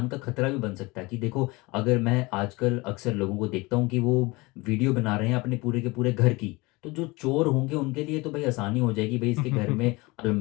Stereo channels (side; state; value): right; quieter; 23.8 dB